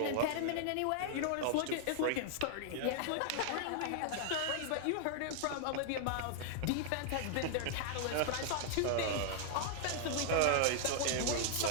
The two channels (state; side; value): different; both; correlation -0.01